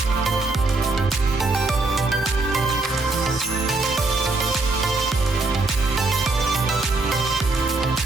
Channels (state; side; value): quieter; left; 3.3 dB